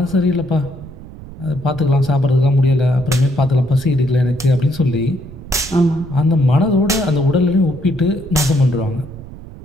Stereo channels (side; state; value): right; noise; rumble, 15 dB below the sound